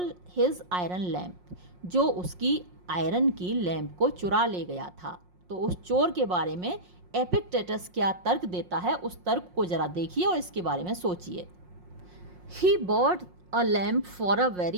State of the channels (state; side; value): late; left; 5.6 ms